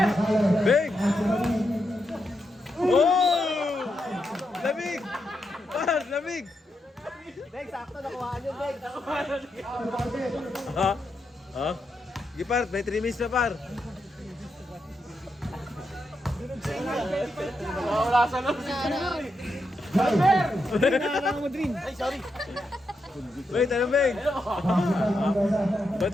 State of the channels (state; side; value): normal; both; correlation 0.84